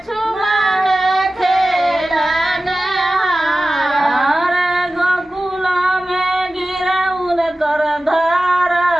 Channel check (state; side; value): normal; both; correlation 0.95